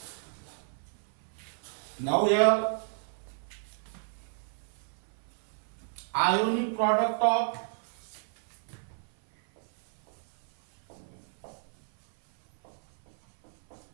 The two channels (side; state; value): left; silent; 57 dB below the other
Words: Now here ionic product of